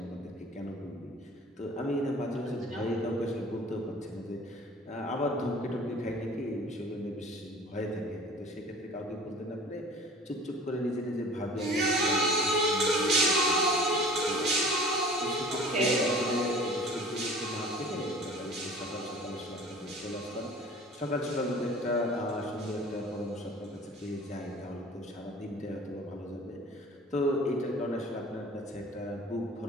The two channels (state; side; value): normal; both; correlation 0.45